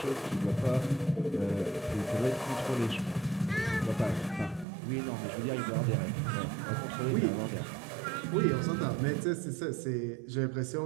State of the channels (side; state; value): left; drops out; at 4.7 s